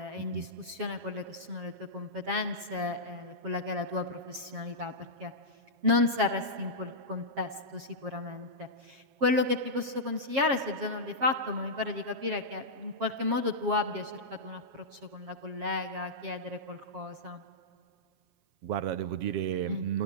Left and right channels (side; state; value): left; late; 7.4 ms